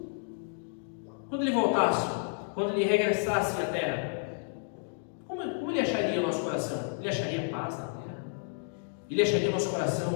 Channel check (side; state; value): right; silent; digital silence